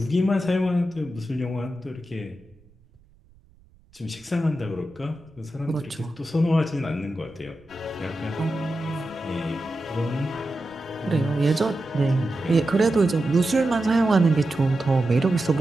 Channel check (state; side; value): noise; right; rumble, 29 dB below the sound